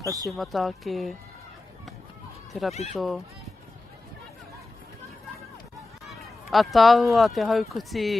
Kasi mata ke te rapito. Atahua te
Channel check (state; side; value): quieter; right; 3.1 dB